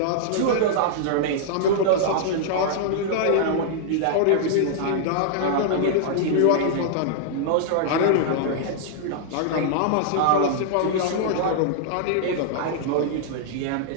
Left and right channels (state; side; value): different; both; correlation -0.01